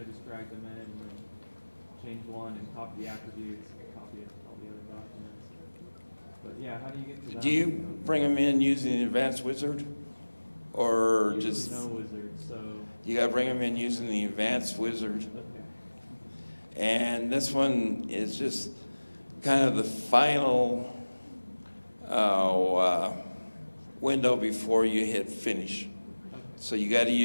I just drag them in and then change one and copy the attributes and copy all the other documents. But yeah, how do you get to that? Do you window? bring them in using the advanced wizard? Or Usually just, no wizard, so, you gotta bring them in using the advanced wizard? okay. And this one is just kind of the final window before you hit finish. So you got to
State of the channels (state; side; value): inverted; both; correlation -1.00